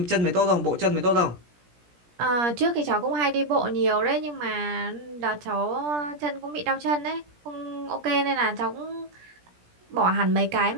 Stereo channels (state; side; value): late; left; 17 ms